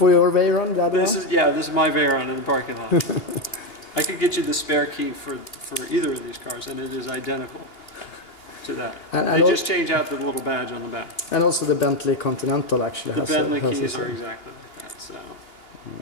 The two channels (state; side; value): late; right; 2.8 ms